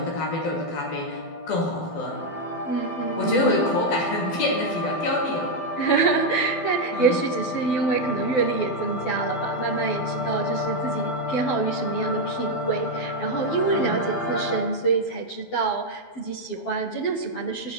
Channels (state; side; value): late; right; 12 ms